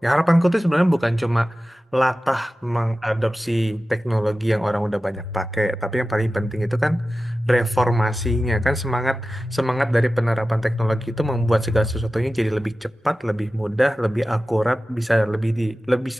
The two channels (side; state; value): both; normal; correlation 0.95